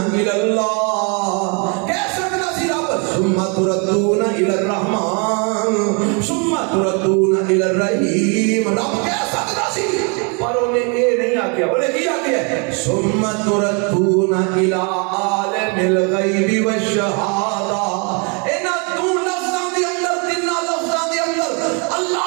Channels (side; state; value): left; quieter; 34.6 dB